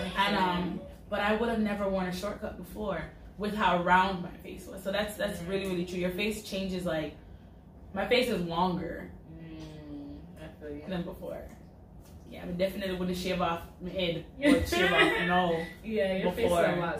And but I would have never worn a shortcut before with how round my face was. So that's really true. Your face changes like. My face is longer than before. Yeah, I definitely wouldn't shave off my head or shave off Yeah, your face is a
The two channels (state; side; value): identical; both; correlation 1.00